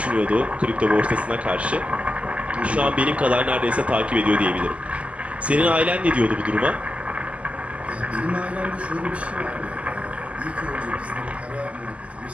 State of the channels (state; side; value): late; left; 0.063 ms